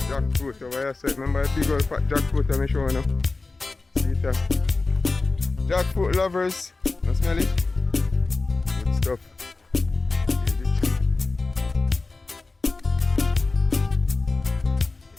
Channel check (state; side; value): quieter; right; 3.6 dB